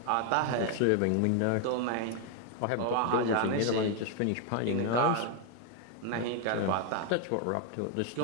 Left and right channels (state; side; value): different; both; correlation 0.00